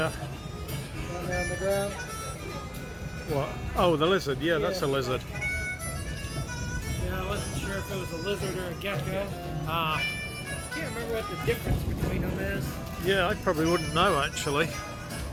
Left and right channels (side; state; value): both; identical; correlation 1.00